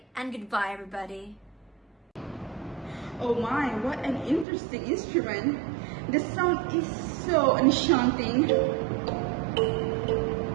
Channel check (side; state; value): left; drops out; at 4.5 s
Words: and goodbye everybody. Oh my, what an interesting instrument. The sound is so enchanting.